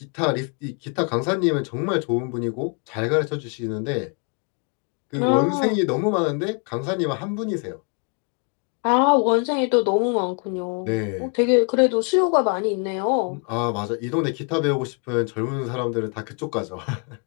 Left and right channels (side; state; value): right; quieter; 38.1 dB